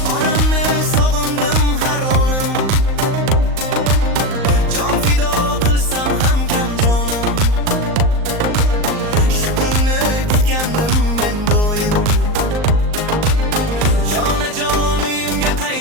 onamni sog'indim har onim, jon fido qilsam ham kam jonim. Shu kunni kutgandim men doim. Jonajon uyimga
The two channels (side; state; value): left; late; 38 ms